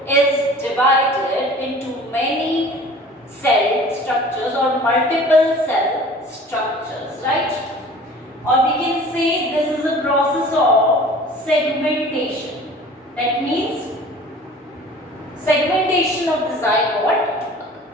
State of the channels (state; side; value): normal; both; correlation 0.45